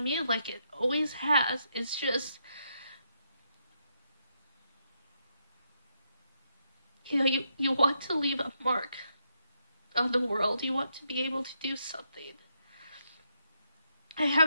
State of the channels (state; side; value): inverted; both; correlation -0.79